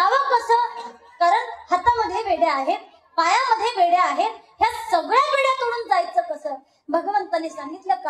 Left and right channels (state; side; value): identical; both; correlation 1.00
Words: कसं, कारण हातामध्ये बेड्या आहेत, पायामध्ये बेड्या आहेत, ह्या सगळ्या बेड्या तोडून जायचं कसं. भगवंताने सांगितलं